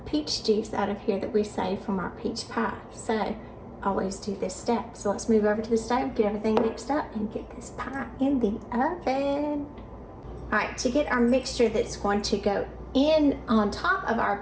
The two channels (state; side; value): identical; both; correlation 1.00